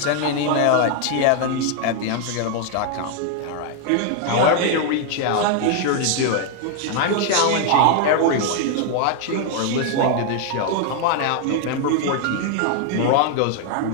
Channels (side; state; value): both; different; correlation 0.00